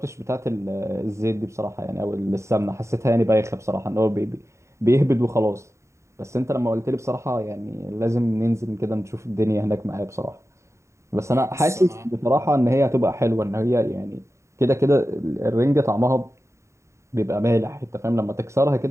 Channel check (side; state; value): left; late; 0.14 ms